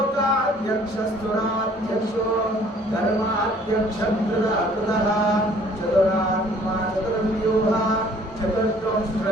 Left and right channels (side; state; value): both; normal; correlation 0.57